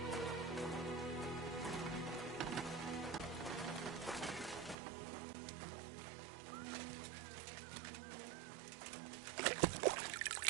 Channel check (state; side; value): drops out; left; at 4.8 s